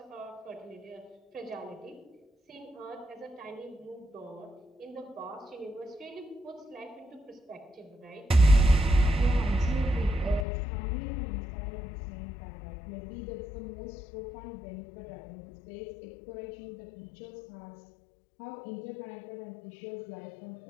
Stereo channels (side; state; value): right; drops out; at 10.5 s